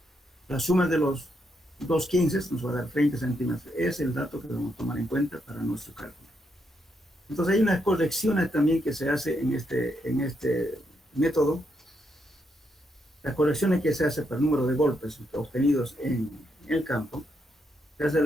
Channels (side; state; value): both; normal; correlation 0.79